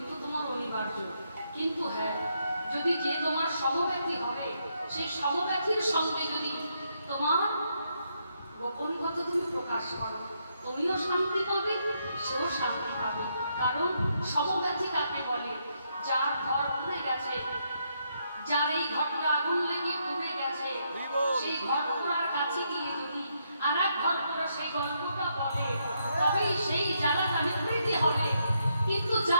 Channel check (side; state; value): both; inverted; correlation -0.77